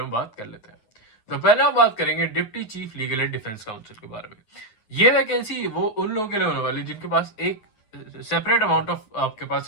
में बात कर लेते हैं। तो पहले हम बात करेंगे deputy chief legal and defence council के बारे में। ये वैकेंसी वो उन लोगों के लिए होने वाली जिनके पास एक सेपरेट अमाउंट ऑफ आपके पास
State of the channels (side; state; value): right; late; 9.4 ms